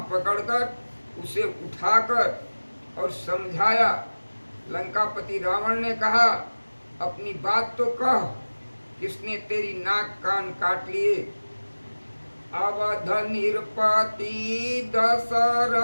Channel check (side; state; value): both; inverted; correlation -1.00